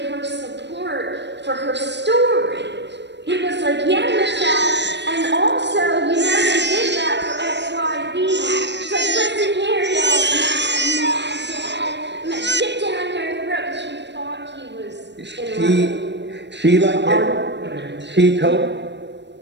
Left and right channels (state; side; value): late; left; 0.51 ms